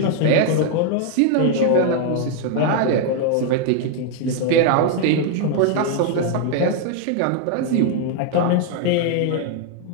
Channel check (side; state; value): both; different; correlation 0.00